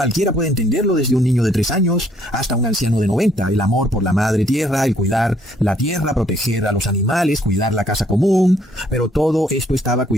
puede entenderlo, desde un niño de 3 años hasta un anciano de 90, el amor por la madre tierra, el cuidar la tierra, proteger a los animales, cuidar la casa común, pero todo esto estaba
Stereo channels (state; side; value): normal; both; correlation 0.66